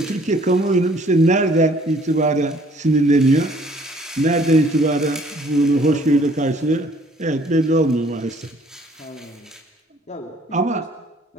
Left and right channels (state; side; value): normal; both; correlation 0.59